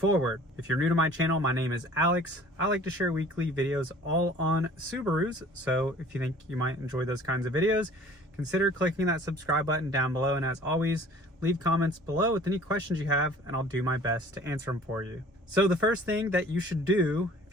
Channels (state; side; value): normal; both; correlation 0.49